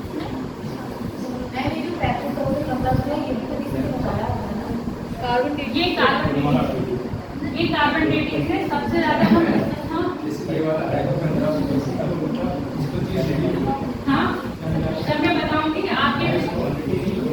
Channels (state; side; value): identical; both; correlation 1.00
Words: ये कार्बन डेटिंग से सबसे ज्यादा हम हाँ, जब मैं बताऊंगी आपके